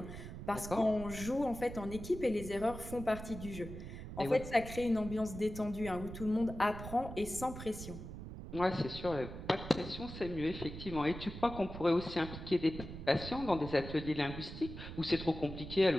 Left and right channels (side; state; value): right; noise; rumble, 10 dB below the sound